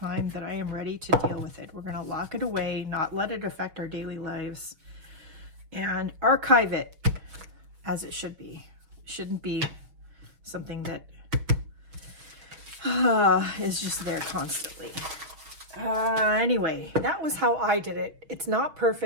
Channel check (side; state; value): left; late; 6.2 ms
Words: that I am ready to deal with it. We're going to lock it away, not let it affect our daily lives, and archive it as it should be. It shouldn't be something that is just there constantly. Anyway, that was how I did it. It's not